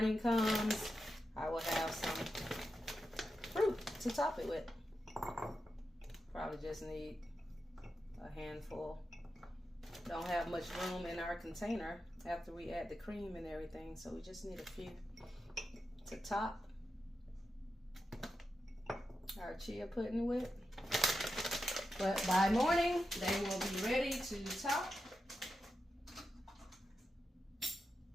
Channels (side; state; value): both; normal; correlation 0.89